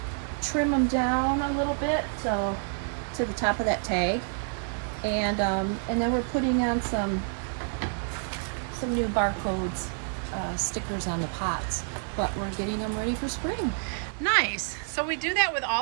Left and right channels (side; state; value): left; silent; 58 dB below the other